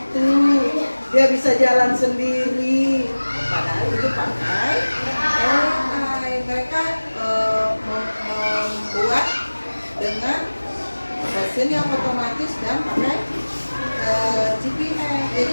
dia bisa jalan sendiri. Padahal itu pakai AI. Mereka membuat dengan mesin yang otomatis dan pakai GPS.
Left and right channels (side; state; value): both; inverted; correlation -1.00